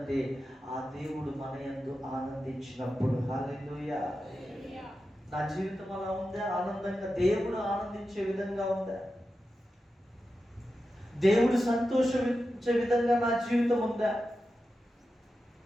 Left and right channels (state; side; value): normal; both; correlation 0.91